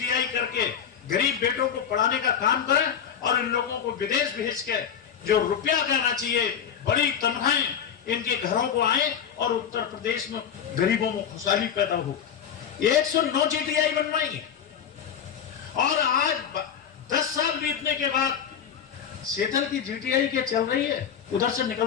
करके गरीब बेटों को पढ़ाने का काम करें, और इन लोगों को विदेश भेज के जो रुपया देना चाहिए, बड़ी तनख्वाहें इनके घरों को आए, और उत्तर प्रदेश में गरीबों में खुशहाली पैदा हो। 109 जीटीआई बनवाई, और आज 10 साल बीतने के बाद सेठल की जीटीआई क्या चल रही है? उधर से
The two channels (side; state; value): right; quieter; 8.2 dB